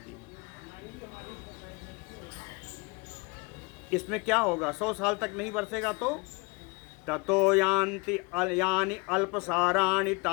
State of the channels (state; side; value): quieter; right; 28.9 dB